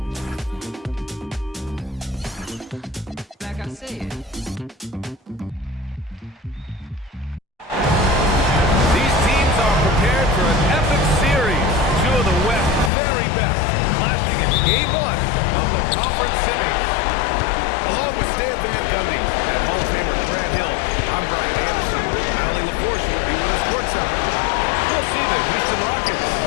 Like I said. These teams are prepared for an epic series. Two of the West's very best, clashing in Game 1 of the conference semis. Along with Stan Van Gundy and Hall of Famer Grant Hill, I'm Brian Anderson. Allie LaForce will be with us courtside. We'll see the Houston Rockets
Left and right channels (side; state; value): right; drops out; at 12.9 s